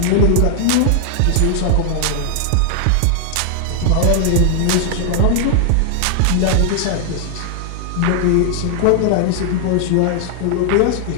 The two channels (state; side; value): different; both; correlation 0.00